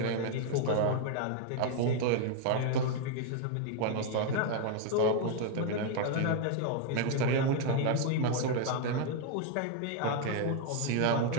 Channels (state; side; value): different; both; correlation 0.00